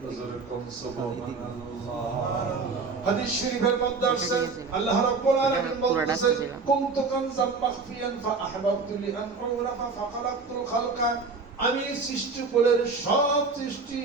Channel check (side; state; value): left; quieter; 4.4 dB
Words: জোরে কোন সুবহানাল্লাহ। হাদিস শরীফের মধ্যে আছে, আল্লাহ রাব্বুল আলামিন বলতেছেন, কুনতু কানজাম মাখফিয়ান ফাআহবাবতু লিআন উরাফা ফাখালাকতুল খালকা। আমি সৃষ্টিকুলের সব সৃষ্টি